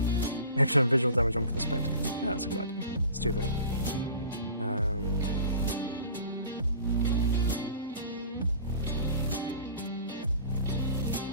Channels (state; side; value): inverted; both; correlation -0.41